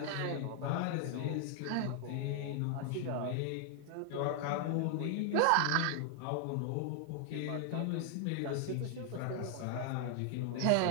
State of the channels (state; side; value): different; both; correlation 0.00